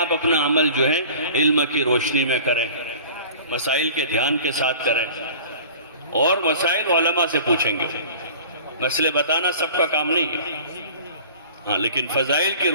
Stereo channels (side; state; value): both; inverted; correlation -0.43